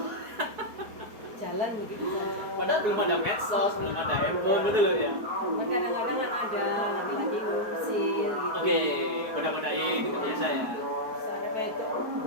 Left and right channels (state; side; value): late; left; 4.8 ms